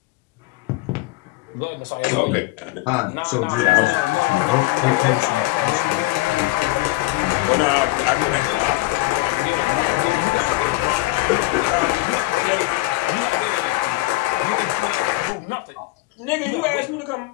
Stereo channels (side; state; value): right; quieter; 19.3 dB